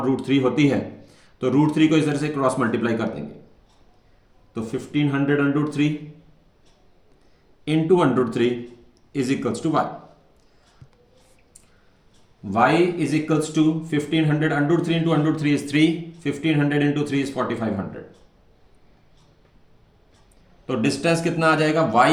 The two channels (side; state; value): both; identical; correlation 1.00